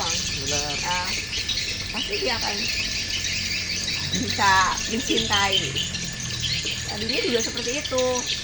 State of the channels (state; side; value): identical; both; correlation 1.00